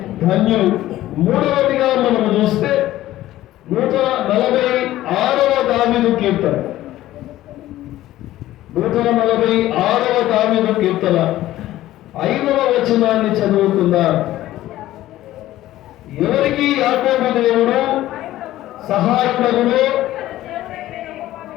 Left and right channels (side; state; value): right; quieter; 14.8 dB